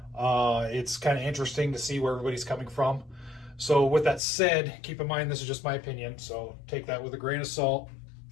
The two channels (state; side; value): drops out; right; at 4.2 s